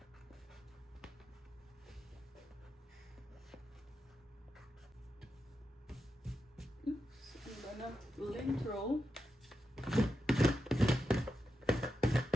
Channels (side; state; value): both; normal; correlation 0.87